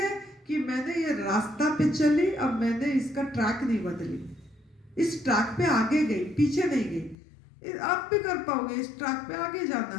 कि मैंने ये रास्ता पे चली, अब मैंने इसका ट्रैक नहीं बदली, इस ट्रैक पे आगे गई, पीछे नहीं गई। आप भी कर पाओगे, इस ट्रैक पे आगे जाना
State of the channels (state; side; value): drops out; right; at 7.2 s